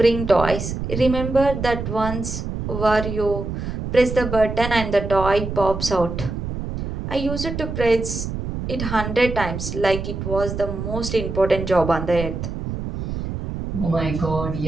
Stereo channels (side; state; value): right; noise; rumble, 5 dB below the sound